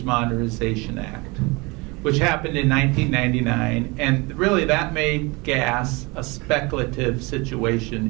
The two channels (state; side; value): quieter; left; 26.2 dB